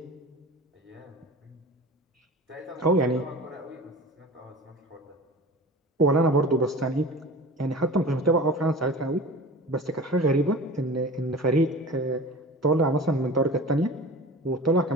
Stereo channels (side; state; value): both; normal; correlation 0.37